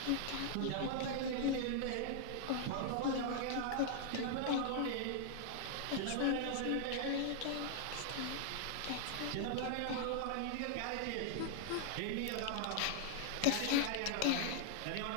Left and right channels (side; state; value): both; different; correlation 0.00